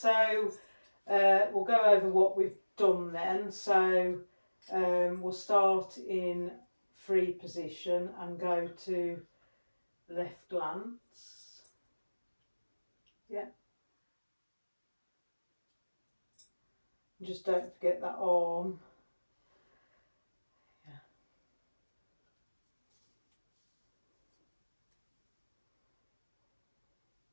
we'll go over what we've done then. So we'll start in free position and go to left glance. Yeah. Just don't forget that arm. Yeah.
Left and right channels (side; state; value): both; inverted; correlation -1.00